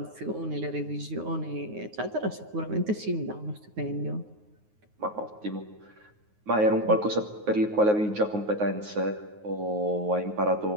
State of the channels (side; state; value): left; late; 9.5 ms